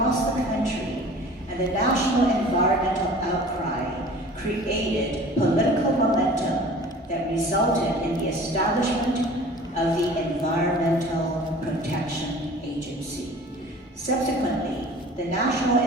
the country, and the national environmental outcry created political momentum that resulted in the establishment of the Environmental Protection Agency. Subsequently, the National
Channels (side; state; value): both; normal; correlation 0.44